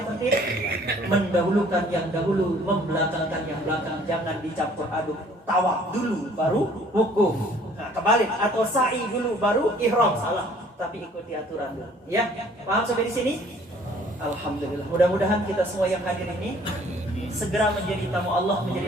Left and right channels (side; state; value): both; normal; correlation 0.56